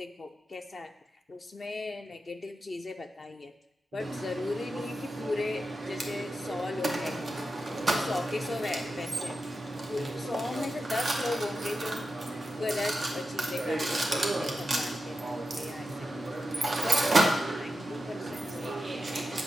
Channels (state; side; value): normal; both; correlation 0.90